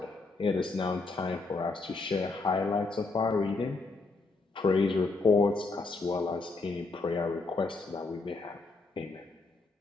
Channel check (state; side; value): quieter; right; 3.7 dB